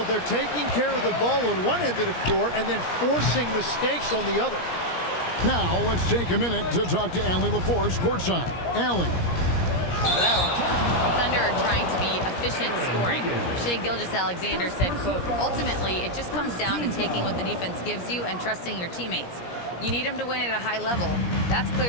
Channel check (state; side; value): late; right; 17 ms